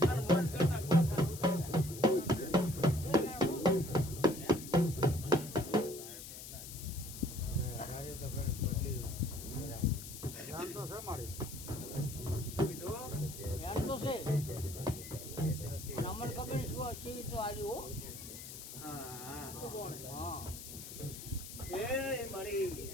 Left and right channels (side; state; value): left; noise; hiss, 11 dB below the sound